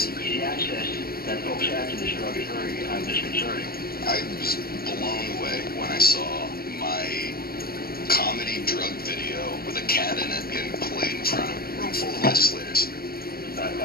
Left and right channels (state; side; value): late; right; 0.44 ms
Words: The access that folks have to this drug is very disconcerting. I was blown away when I saw my comedy drug video with a cat in it getting played in front of a room full of legislators. A